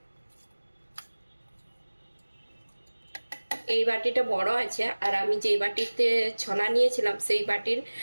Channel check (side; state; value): both; inverted; correlation -1.00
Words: এই বাটিটা বড় আছে আর আমি যেই বাটিতে ছোলা নিয়েছিলাম সেই বাটির